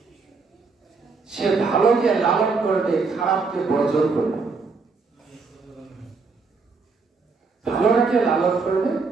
সে ভালোকে লালন করবে, খারাপকে বর্জন করবে। ভালোটাকে লালন করবে,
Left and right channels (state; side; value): quieter; left; 4.5 dB